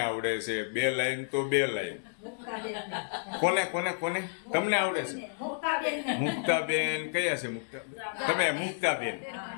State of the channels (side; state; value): right; silent; digital silence